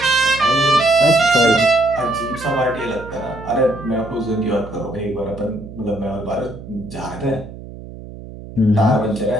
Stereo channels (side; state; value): right; noise; hum, 14 dB below the sound